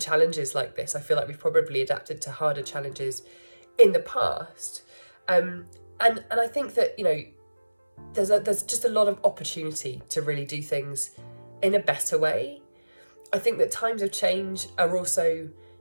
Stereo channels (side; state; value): both; inverted; correlation -1.00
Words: like this. I feel like we've probably adapted to harder challenges in the past, and I think that, you know, there's just a lot of opportunity to really do things in a better way. I think that times of change are also,